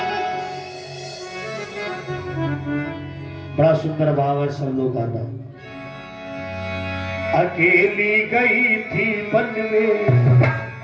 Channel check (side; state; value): both; identical; correlation 1.00